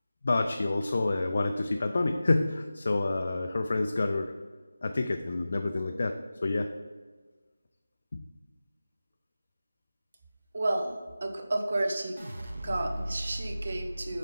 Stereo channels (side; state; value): both; inverted; correlation -0.95